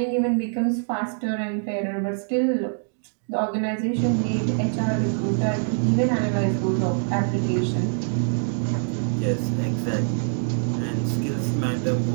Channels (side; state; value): left; silent; digital silence